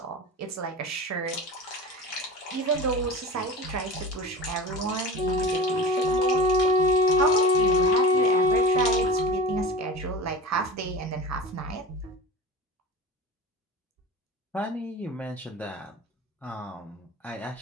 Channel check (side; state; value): both; normal; correlation 0.33